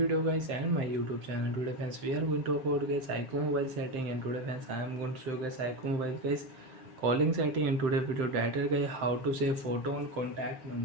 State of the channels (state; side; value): late; left; 7.6 ms